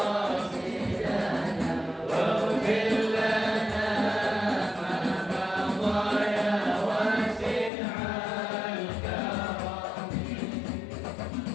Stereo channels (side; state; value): right; drops out; at 7.7 s